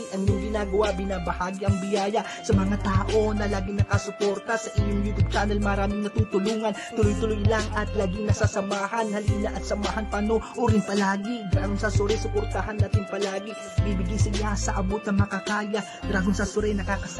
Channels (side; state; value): both; identical; correlation 1.00